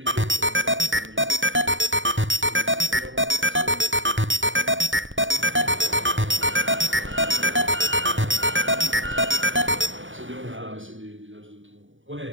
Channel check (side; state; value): left; late; 0.56 ms